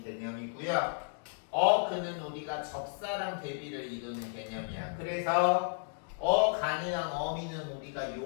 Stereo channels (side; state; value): right; silent; digital silence